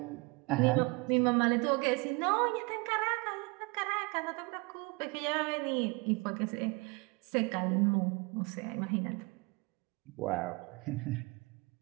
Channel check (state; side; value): quieter; left; 26.9 dB